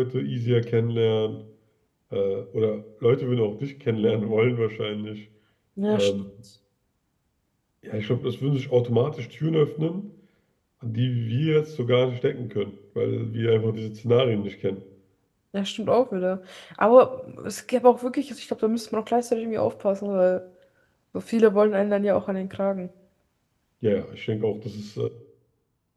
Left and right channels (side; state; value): both; identical; correlation 1.00